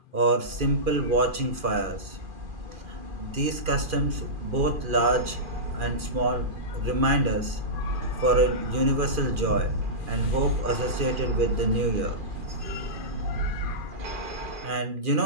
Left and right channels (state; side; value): late; left; 2.4 ms